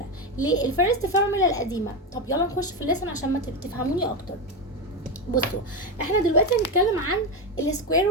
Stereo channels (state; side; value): normal; both; correlation 0.13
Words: ليه الفيرست فورمولا القديمة؟ طب يلا نخش في الليسن عشان ما تفهموني اكتر. بصوا، احنا دلوقتي هنتكلم عن السكوير